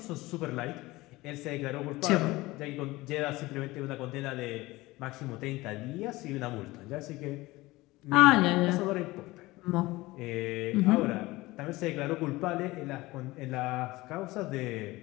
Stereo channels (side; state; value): right; quieter; 20.0 dB